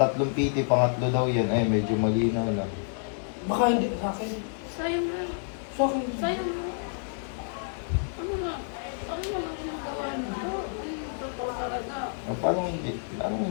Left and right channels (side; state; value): right; silent; digital silence